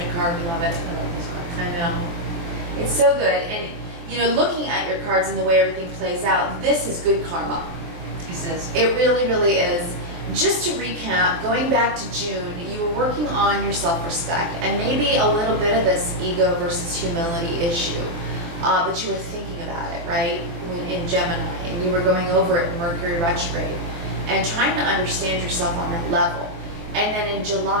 card. We love it. I love this card. I know. It's so good. And, you know, looking at your cards and the way everything plays out, this is good karma. This is. It really, really is. Just to recap, going back to June, you were working on your self-respect and maybe a little bit of this ego versus humility issue, but you were thinking about it, right, in Gemini, and you were going over it in Mercury retrograde and trying to understand yourself on that level. And then in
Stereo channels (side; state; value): left; late; 24 ms